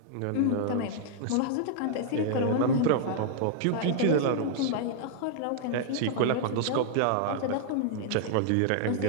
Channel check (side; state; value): both; different; correlation -0.01